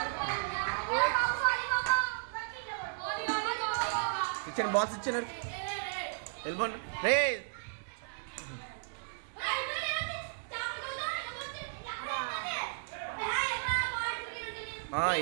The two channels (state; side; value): silent; left; 55 dB below the other